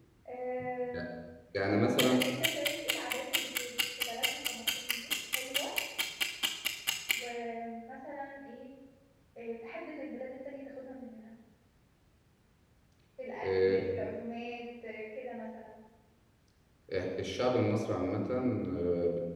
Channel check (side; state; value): both; identical; correlation 1.00